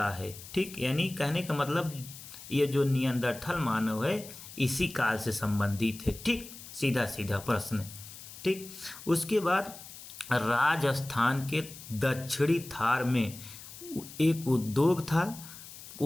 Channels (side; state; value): left; noise; hiss, 15 dB below the sound